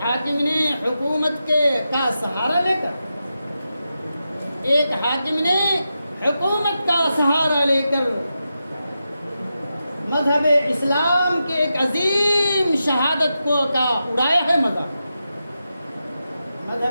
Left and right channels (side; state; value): both; inverted; correlation -0.89